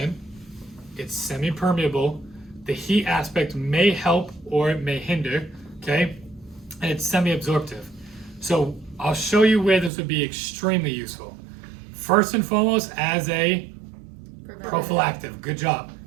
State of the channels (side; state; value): left; drops out; at 9.9 s